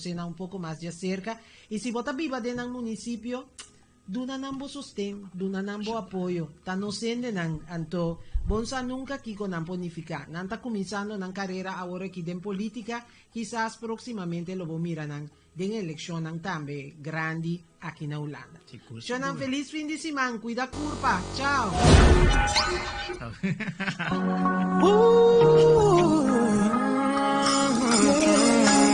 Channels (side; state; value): both; identical; correlation 1.00